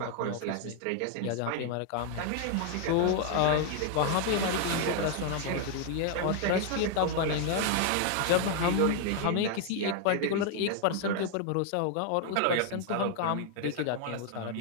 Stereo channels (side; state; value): both; different; correlation 0.00